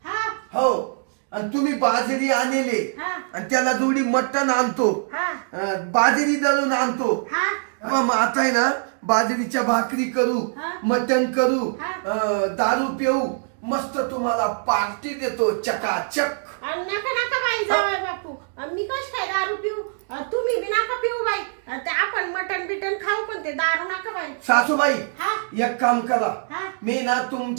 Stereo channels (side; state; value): left; silent; digital silence